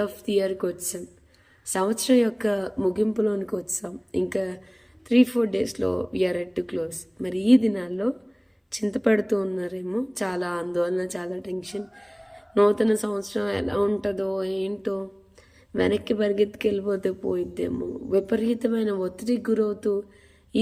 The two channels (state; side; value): identical; both; correlation 1.00